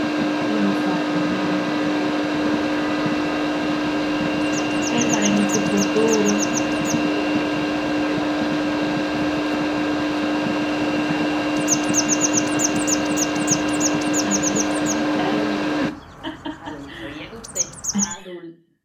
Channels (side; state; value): both; identical; correlation 1.00